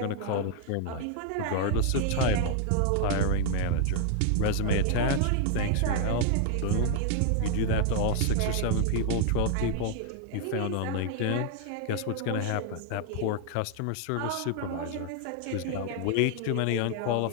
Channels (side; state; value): both; different; correlation 0.00